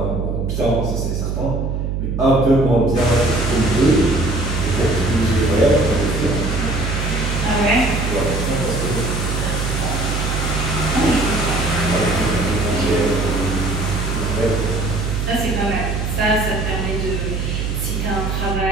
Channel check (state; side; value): noise; right; hum, 1 dB below the sound